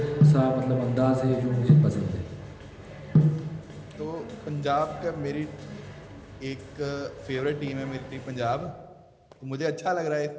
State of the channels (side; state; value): both; identical; correlation 1.00